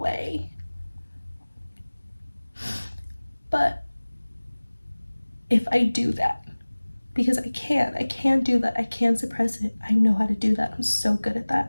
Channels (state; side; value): inverted; both; correlation -1.00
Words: But if I do that, because I can do that. I can suppress it. I know how to do that. I'm so good at